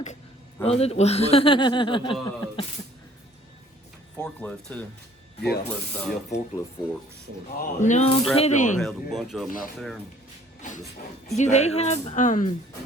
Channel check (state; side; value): normal; both; correlation 0.56